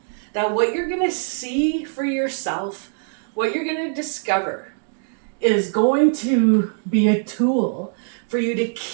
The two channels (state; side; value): silent; left; 64 dB below the other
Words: that what you're going to see for yourself, what you're going to discover, is going to be a tool for you to